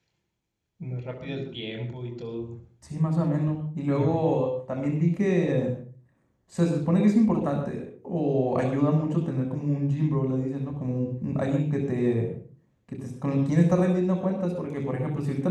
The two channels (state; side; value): identical; both; correlation 1.00